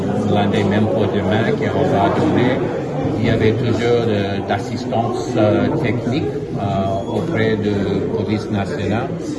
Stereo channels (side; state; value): both; identical; correlation 1.00